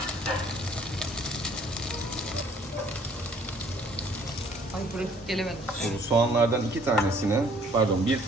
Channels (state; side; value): normal; both; correlation 0.60